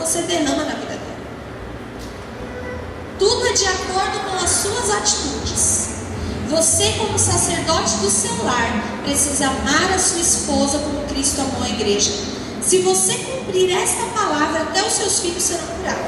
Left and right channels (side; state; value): both; identical; correlation 1.00